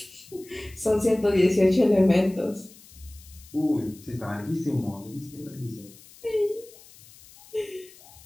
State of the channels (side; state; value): left; noise; hiss, 22 dB below the sound